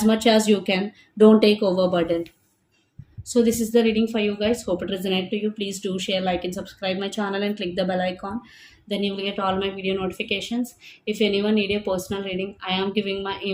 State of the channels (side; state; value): both; identical; correlation 1.00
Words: much as you can, don't take overburden. So this is the reading for you guys. Hope it resonated to you. Please do share, like, and subscribe my channel and click the bell icon. Then you will get all my video notifications. If anyone need a personal reading, I am giving my